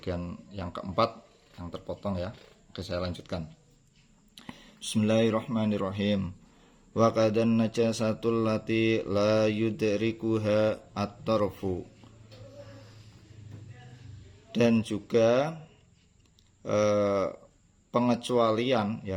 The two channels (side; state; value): both; identical; correlation 1.00